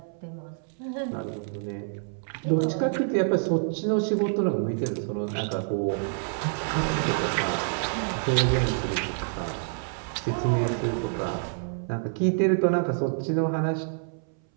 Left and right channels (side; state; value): left; silent; 60 dB below the other